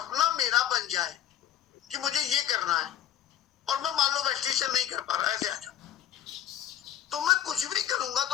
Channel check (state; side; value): quieter; right; 11.0 dB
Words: मेरा बन जाए कि मुझे ये करना है और मैं मान लो वेस्टिशन नहीं कर पा रहा, ऐसे आ जाओ, तो मैं कुछ भी करूंगा